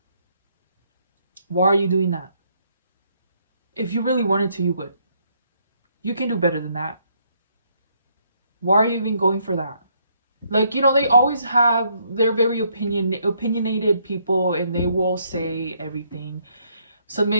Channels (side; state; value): both; inverted; correlation -0.71